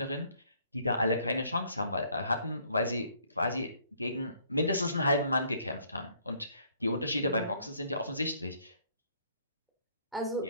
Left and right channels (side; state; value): both; inverted; correlation -0.64